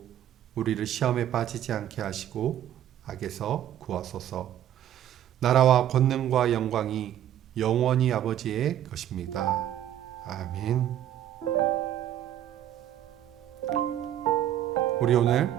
우리를 시험에 빠지지 않게 하시고 악에서 구하소서. 나라와 권능과 영광이 영원히 아버지의 것입니다. 아멘. 우리 오늘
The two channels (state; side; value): quieter; left; 11.3 dB